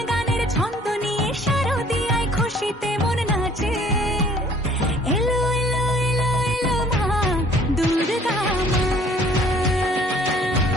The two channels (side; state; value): both; normal; correlation 0.55